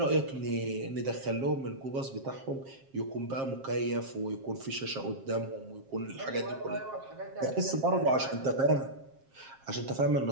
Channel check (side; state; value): left; late; 7.5 ms